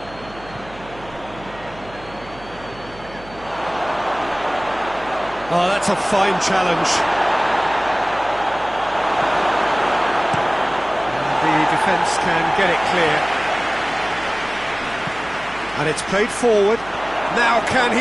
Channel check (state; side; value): noise; right; hum, 19 dB below the sound